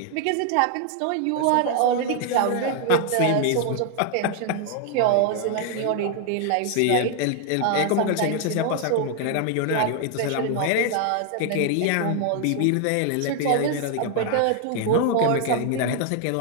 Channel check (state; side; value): different; both; correlation 0.00